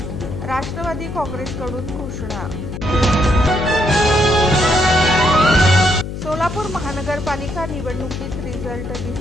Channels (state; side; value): noise; left; hum, 7 dB below the sound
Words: राष्ट्रवादी काँग्रेसकडून घोषणा. सोलापूर महानगरपालिका निवडणुकीत रिझल्ट